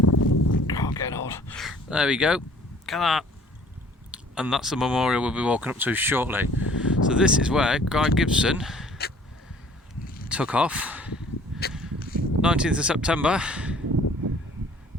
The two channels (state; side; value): normal; both; correlation 0.54